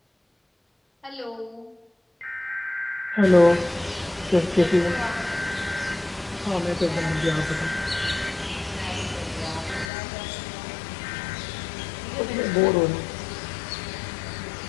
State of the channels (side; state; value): right; drops out; at 9.9 s